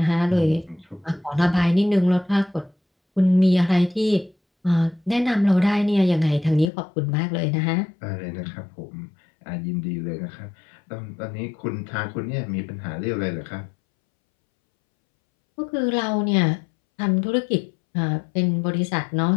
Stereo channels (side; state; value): right; drops out; at 6.7 s